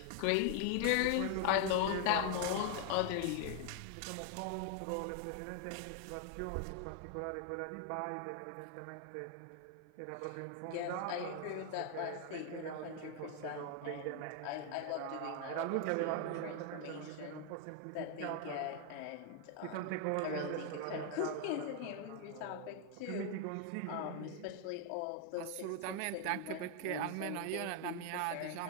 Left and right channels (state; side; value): different; both; correlation 0.00